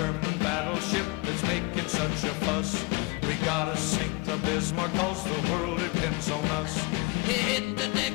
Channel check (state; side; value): quieter; right; 24.4 dB